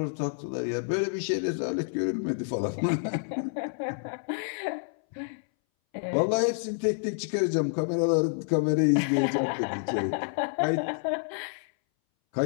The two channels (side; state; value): right; silent; 59 dB below the other